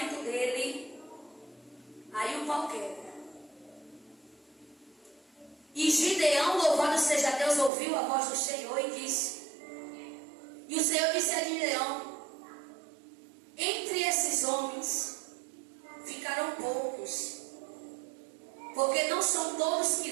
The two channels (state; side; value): drops out; left; at 7.7 s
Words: dele, aí o pau quebra. E Gideão, louvado seja Deus, ouviu a voz do Senhor e disse: e o Senhor disse a Gideão: entre esses homens ficarão poucos, porque não são todos que